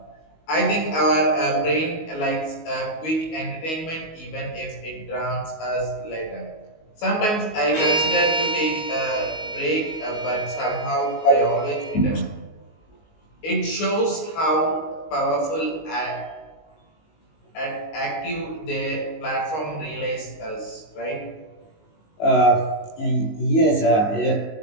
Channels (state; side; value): late; right; 19 ms